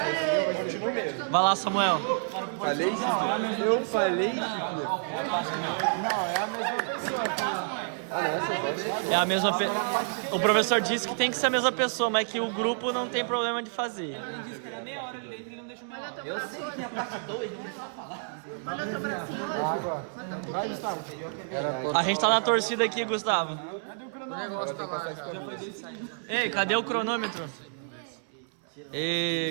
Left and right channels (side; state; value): left; silent; digital silence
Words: Continua mesmo. Vai lá, Samuel. Falei? Eu falei? Não, é a mesma pessoa. É a mesma O professor disse que tem que ser a mesma pessoa, mas que o grupo não tem problema de fazer. Ele disse que era meia hora ali dentro e ele não deixou meia hora. Eu sei que a parte 2 não precisa falar. Olha o teu bracinho hoje. Vai, Gustavo. A gente tá na torcida aqui, Gustavo. Cadê o cronômetro? Já foi decidido. Ei, cadê o cronômetro?